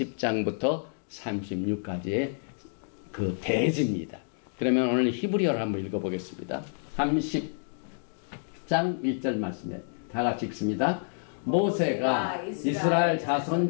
36까지의 그 대지입니다. 그러면 오늘 히브리어를 한번 읽어보겠습니다. 30장 1절 말씀에 다 같이 읽습니다. 모세가 이스라엘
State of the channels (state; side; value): silent; right; digital silence